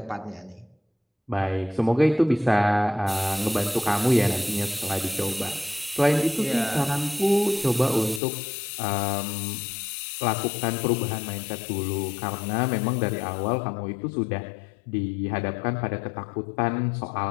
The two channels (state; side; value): drops out; right; at 8.2 s